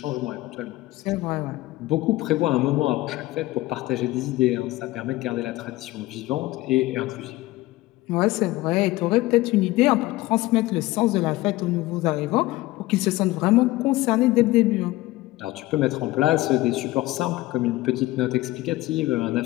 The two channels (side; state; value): right; quieter; 18.4 dB